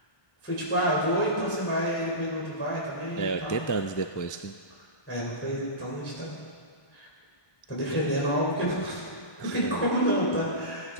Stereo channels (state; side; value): late; right; 1.2 ms